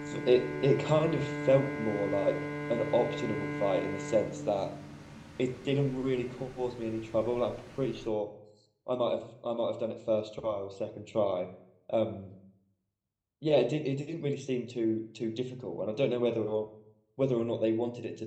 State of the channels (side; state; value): both; identical; correlation 1.00